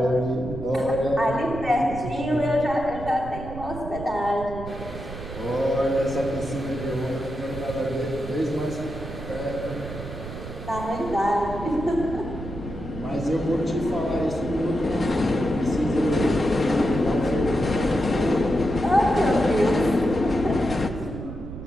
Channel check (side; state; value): right; noise; rumble, 10 dB below the sound